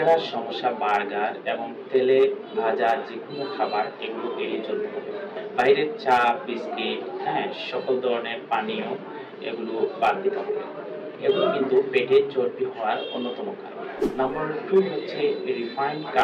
সমস্যা, বার্গার এবং তেলে ভাজা যেকোনো খাবার এগুলো এড়িয়ে চলতে হবে। বাইরের চা, বিস্কিট, সকল ধরনের পানীয় এগুলো বাদ দিতে হবে। এগুলো কিন্তু পেটের চর্বি হওয়ার অন্যতম কারণ। নাম্বার 2 হচ্ছে রিফাইন্ড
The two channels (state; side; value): identical; both; correlation 1.00